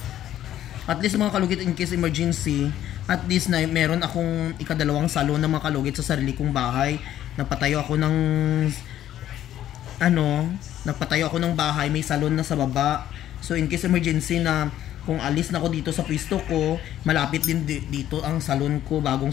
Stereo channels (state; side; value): quieter; right; 12.1 dB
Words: At least mga kalugit, in case emergency, at least na meron akong ikadalawang salon na mga kalugit sa sarili kong bahay. Nagpatayo ako ng nagpatayo ako ng bahay, may salon na sa baba. So in case emergency na kung alis na ako dito sa pwesto ko, malapit din dito ang salon ko,